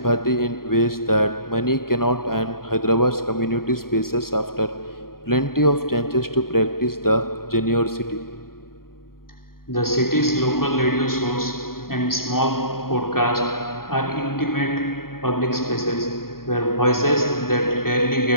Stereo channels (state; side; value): late; right; 0.93 ms